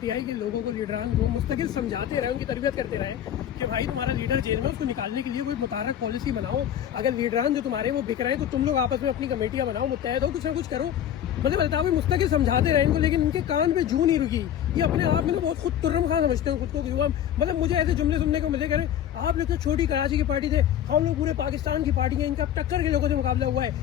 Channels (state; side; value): quieter; right; 10.3 dB